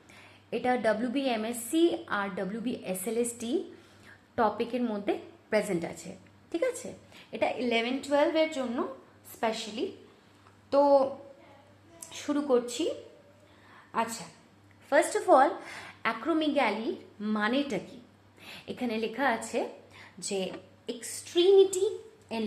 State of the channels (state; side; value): identical; both; correlation 1.00